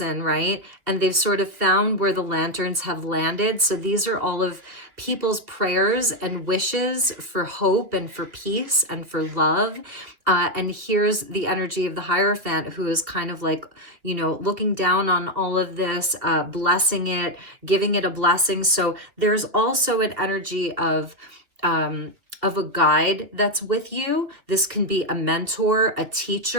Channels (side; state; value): left; late; 2.7 ms